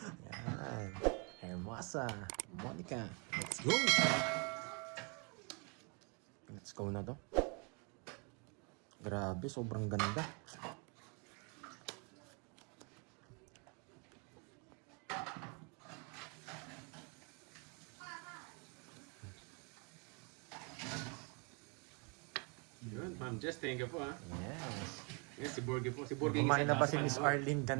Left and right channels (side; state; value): left; quieter; 34.1 dB